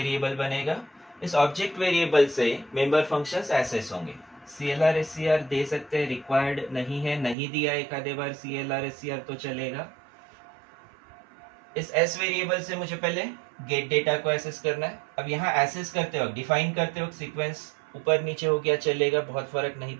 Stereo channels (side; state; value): left; drops out; at 7.4 s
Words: बनेगा, इस ऑब्जेक्ट वेरिएबल से मेंबर फंक्शंस एक्सेस होंगे। CLR SCR दे सकते हैं, रिक्वायर्ड नहीं है, नहीं दिया एक आधे बार CLR SCR तो चलेगा। इस S वेरिएबल से मुझे पहले गेट डेटा को एक्सेस करना है। अब यहाँ एक्सेस करते वक्त, डिफाइन करते वक्त सीक्वेंस ऊपर नीचे हो गया चलेगा, बहुत फर्क नहीं